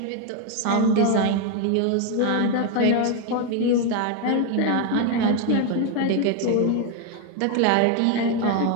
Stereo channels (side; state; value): both; different; correlation 0.01